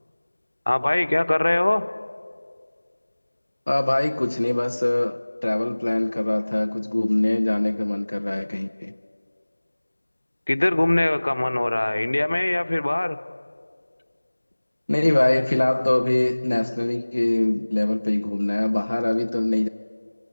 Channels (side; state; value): both; inverted; correlation -1.00